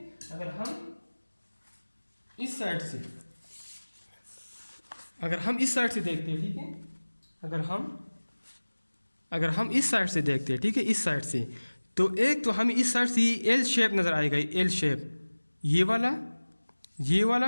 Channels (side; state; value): both; inverted; correlation -1.00